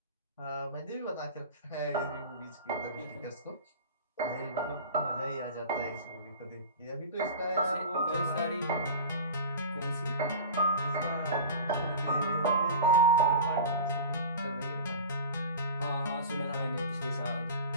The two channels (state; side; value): inverted; both; correlation -0.33